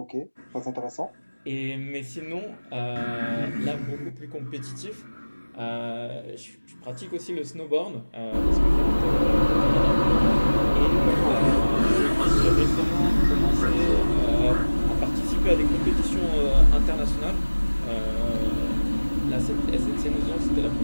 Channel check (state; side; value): inverted; both; correlation -1.00